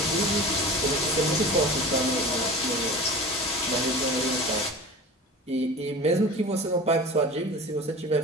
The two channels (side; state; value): both; normal; correlation 0.36